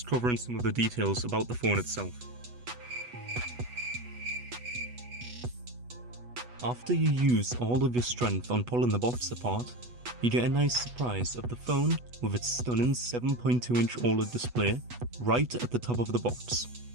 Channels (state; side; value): late; left; 8.2 ms